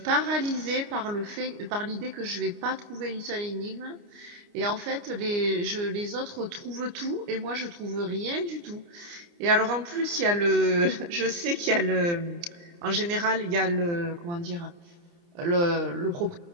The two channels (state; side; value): late; left; 29 ms